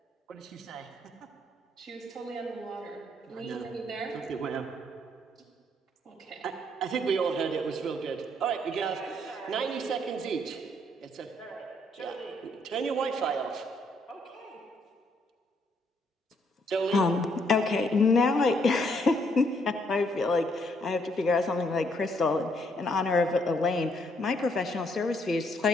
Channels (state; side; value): normal; both; correlation 0.71